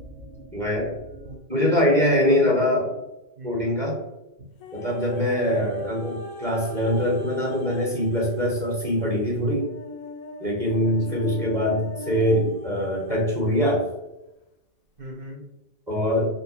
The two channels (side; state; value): left; late; 2.0 ms